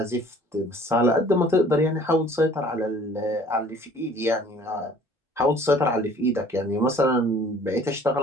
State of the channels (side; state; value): both; normal; correlation 0.53